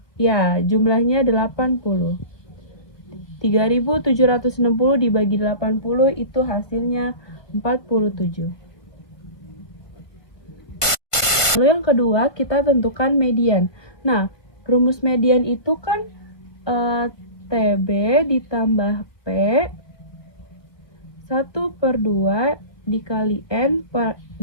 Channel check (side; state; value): right; late; 1.5 ms